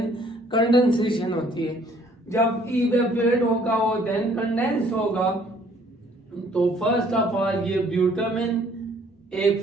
कंडेंसेशन होती है। जब इवेपोरेट होगा और देन कंडेंस होगा तो फर्स्ट ऑफ ऑल ये ब्यूटामिन एक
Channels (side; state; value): both; normal; correlation 0.60